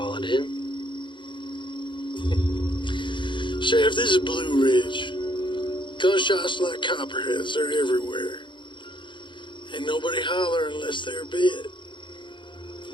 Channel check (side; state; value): right; late; 0.23 ms